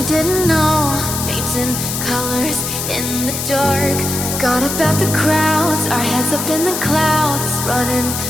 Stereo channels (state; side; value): noise; left; hiss, 4 dB below the sound